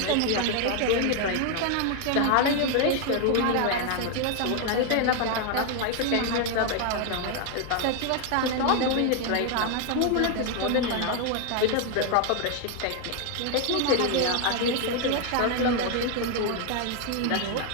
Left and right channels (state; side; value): different; both; correlation 0.01